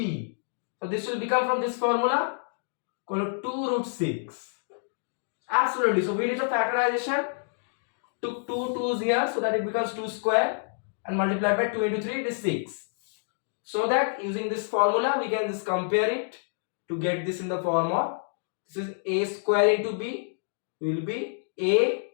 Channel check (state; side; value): silent; right; digital silence